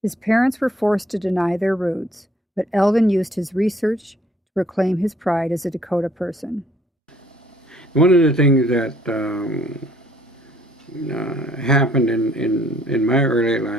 His parents were forced to deny their roots, but Elden used his research to reclaim his pride as a Dakota person. One of the things that happened in my early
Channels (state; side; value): normal; both; correlation 0.62